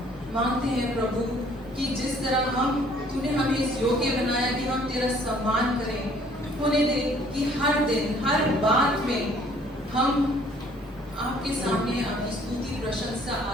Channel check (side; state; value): both; normal; correlation 0.59